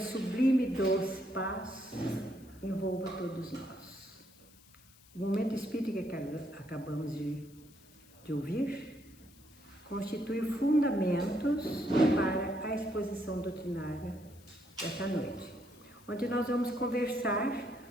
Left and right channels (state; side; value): noise; left; hiss, 25 dB below the sound